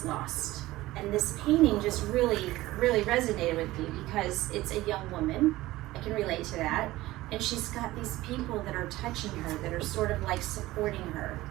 Lost." And this painting just really resonated with me because it's a young woman. I can relate to that. And she's got these people that are touching her, that are sort of like supporting her.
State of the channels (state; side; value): quieter; left; 17.5 dB